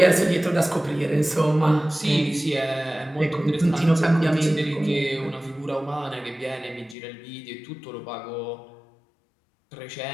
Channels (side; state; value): right; drops out; at 7.0 s